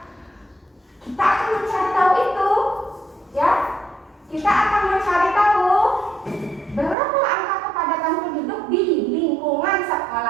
Kita akan mencari tahu itu. Ya, kita akan mencari tahu berapa angka kepadatan penduduk di lingkungan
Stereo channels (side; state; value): left; drops out; at 7.0 s